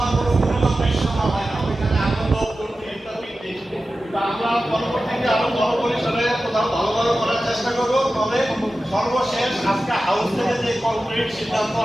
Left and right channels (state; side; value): normal; both; correlation 0.94